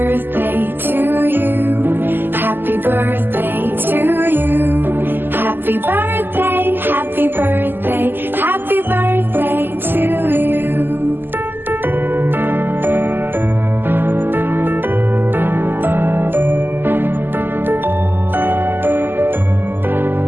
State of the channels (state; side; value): late; left; 0.095 ms